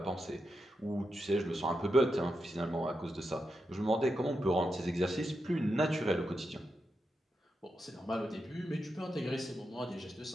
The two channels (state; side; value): normal; both; correlation 0.86